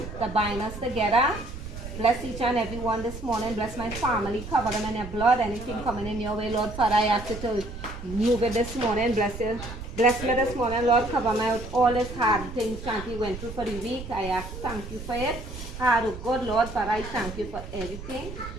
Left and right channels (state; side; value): noise; right; rumble, 11 dB below the sound